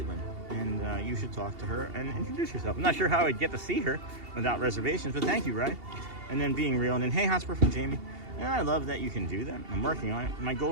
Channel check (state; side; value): late; left; 2.8 ms